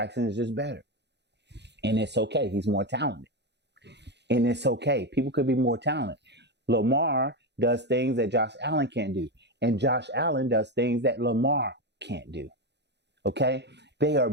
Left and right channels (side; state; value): left; late; 0.50 ms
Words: is just better. And it's okay. He's more talented. And it's okay. People could be more talented. Lamar does things that Josh Allen can't do. And Josh Allen does things that Lamar can't do. Okay? They are